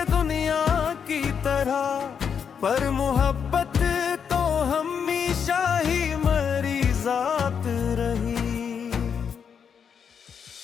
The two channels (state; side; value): quieter; right; 7.1 dB